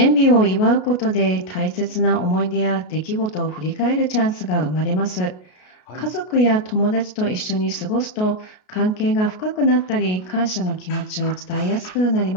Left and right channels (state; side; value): late; right; 33 ms